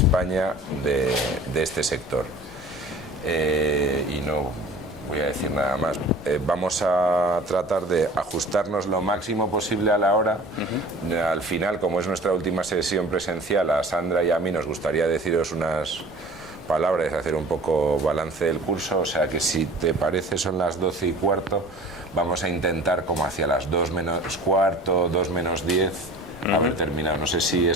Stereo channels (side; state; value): both; normal; correlation 0.43